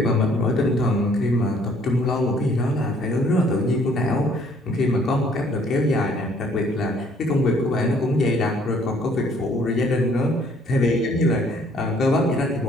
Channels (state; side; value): normal; both; correlation 0.61